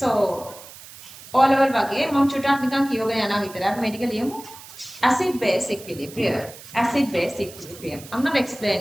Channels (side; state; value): right; noise; hiss, 17 dB below the sound